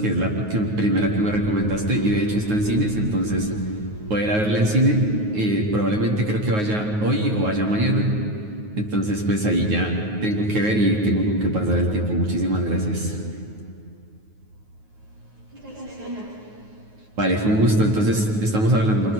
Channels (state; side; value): late; left; 9.4 ms